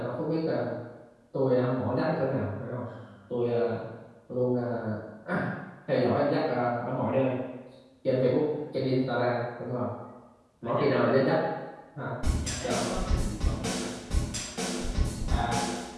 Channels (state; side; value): identical; both; correlation 1.00